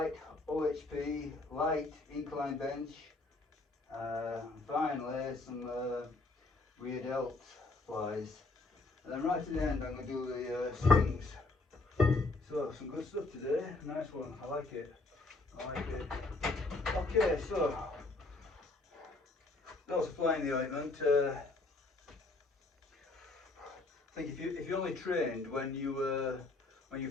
OHP, light incline bench, finally some rear delt flies. And then right at the end I'm going to do the swings. So some good stuff today, nice one, I like it. Okay, so that was flying the ointment. I think if you only trained when you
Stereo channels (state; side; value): quieter; right; 3.3 dB